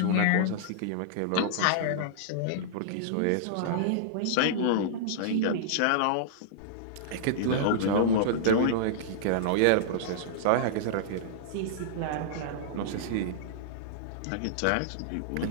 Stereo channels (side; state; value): both; different; correlation -0.02